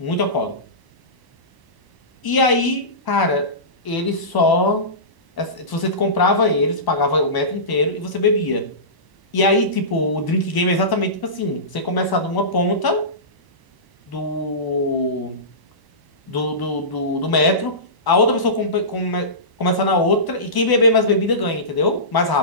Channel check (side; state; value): right; late; 1.0 ms